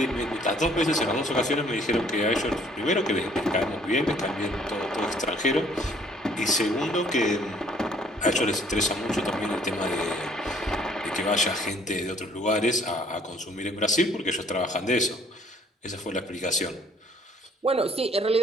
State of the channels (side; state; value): both; normal; correlation 0.60